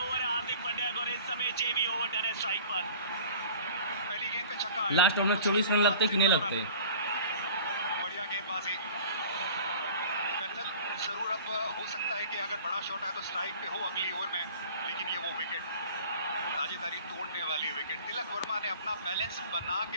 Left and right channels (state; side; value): inverted; both; correlation -0.45